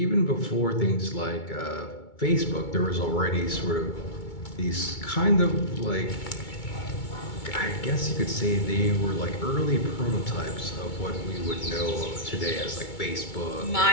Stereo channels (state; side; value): late; right; 2.2 ms